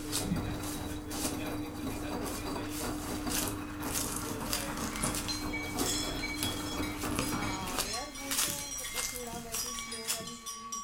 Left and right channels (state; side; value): identical; both; correlation 1.00